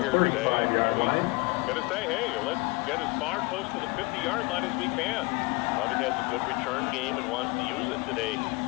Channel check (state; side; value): quieter; right; 26.1 dB